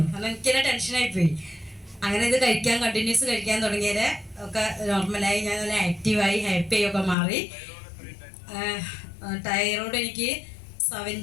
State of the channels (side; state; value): right; drops out; at 7.2 s